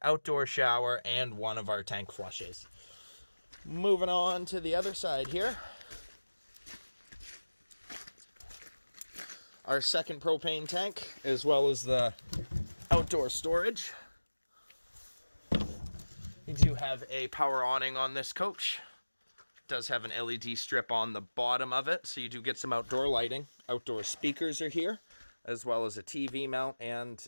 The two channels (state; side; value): inverted; both; correlation -1.00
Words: outdoor shower, and one of our tank flushes. Moving on to the other side here. Our second propane tank, as well as the outdoor storage. You do have a power awning on this coach. It does have an LED strip on the bottom of it, so you do get some outdoor lighting. Outdoor speakers are here, as well as a TV mount and